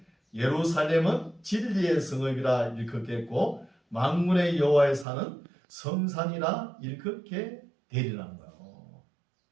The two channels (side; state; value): left; drops out; at 5.1 s